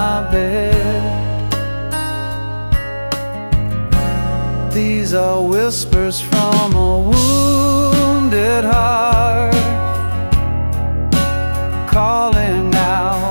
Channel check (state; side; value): inverted; both; correlation -1.00